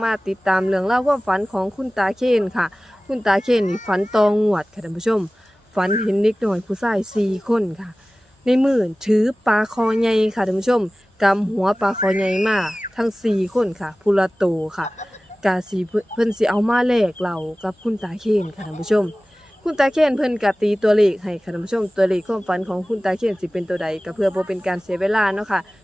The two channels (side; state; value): both; normal; correlation 0.97